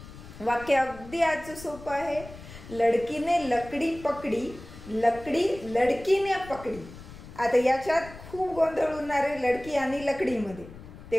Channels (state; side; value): noise; left; rumble, 16 dB below the sound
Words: वाक्य अगदी आजचं सोपं आहे। लड़की ने लकड़ी पकड़ी, लकड़ी लड़की ने पकड़ी। आता याच्यात खूप गोंधळ होणार आहे लड़की आणि लकडी मध्ये।